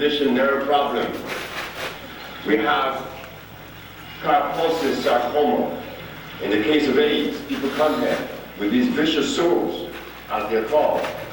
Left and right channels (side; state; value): both; identical; correlation 1.00